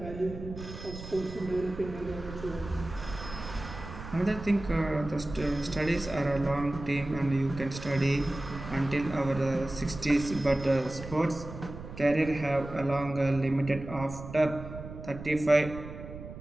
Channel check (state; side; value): noise; right; rumble, 12 dB below the sound